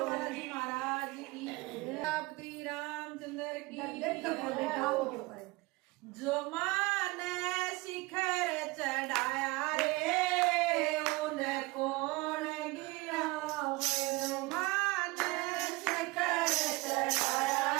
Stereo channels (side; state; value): left; quieter; 22.8 dB